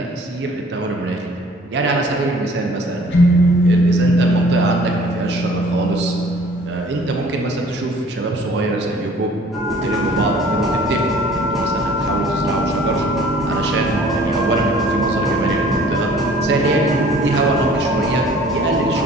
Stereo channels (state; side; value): normal; both; correlation 0.52